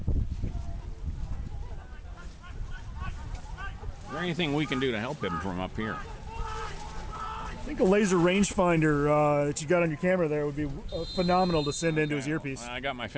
Is there anything we can do to help him from up here? I think a laser rangefinder that you got on your camera there would be phenomenal to send into his earpiece. I got my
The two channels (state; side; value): identical; both; correlation 1.00